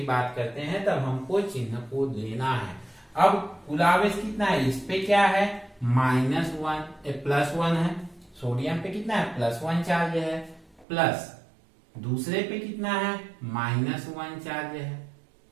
बात करते हैं तब हमको चिन्ह को लेना है। अब कुल आवेश कितना है? इस पे क्या है? +1 है। सोडियम पे कितना है? +1 चार्ज है, प्लस दूसरे पे कितना है? -1 चार्ज है।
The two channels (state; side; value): drops out; left; at 10.9 s